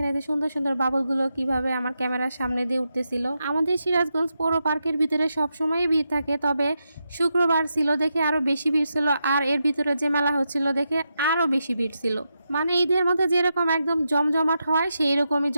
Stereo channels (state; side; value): inverted; both; correlation -0.86